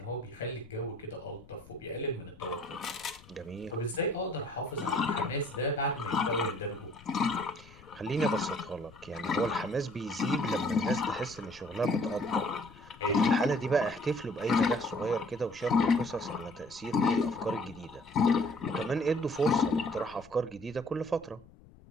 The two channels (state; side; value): noise; left; rumble, 23 dB below the sound